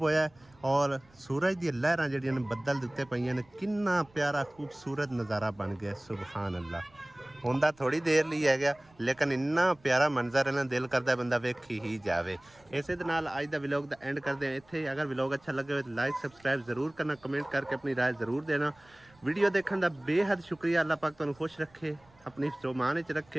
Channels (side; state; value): right; noise; rumble, 29 dB below the sound